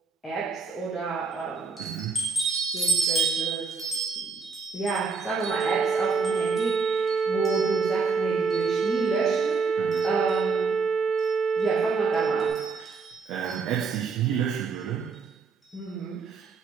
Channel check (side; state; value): left; quieter; 4.9 dB